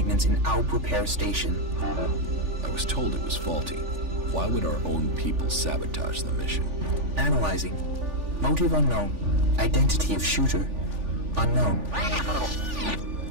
in Alb repair station. I was told it was faulty. Why would our own people sabotage the mission? Analyzing. Motive unknown. Identity of shooter unknown.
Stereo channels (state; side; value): late; left; 3.4 ms